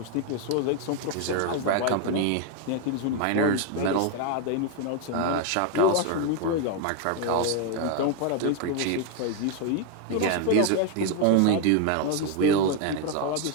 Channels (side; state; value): both; different; correlation 0.01